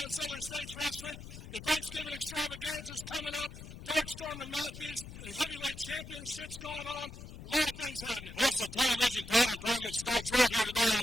in Southern States Wrestling. The Thanksgiving extravaganza is coming up. Darkstorm and Matthews heavyweight championships going on. A lot of things happening. Plus the television title tournament starts right here today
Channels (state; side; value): noise; left; rumble, 13 dB below the sound